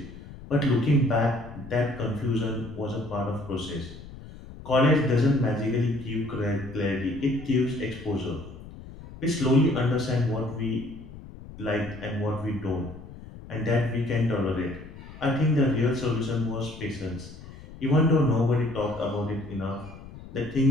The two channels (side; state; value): left; noise; rumble, 15 dB below the sound